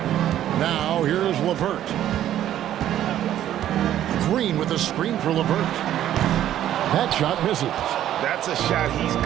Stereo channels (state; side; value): quieter; left; 11.8 dB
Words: Now here's LeVert. Green with a screen for LeVert. That shot misses. That's a shot he's